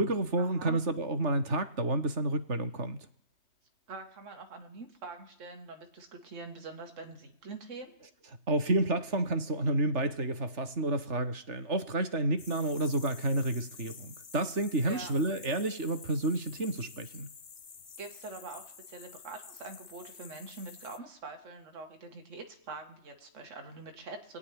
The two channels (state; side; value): late; left; 2.9 ms